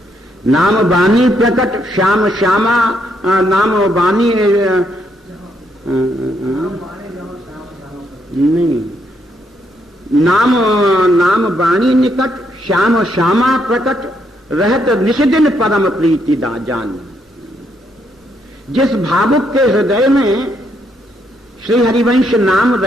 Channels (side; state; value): both; normal; correlation 0.75